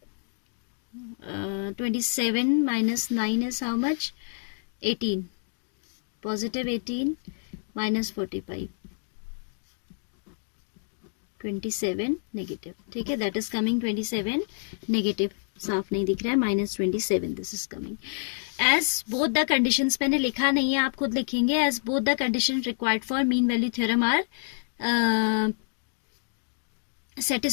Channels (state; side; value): silent; right; digital silence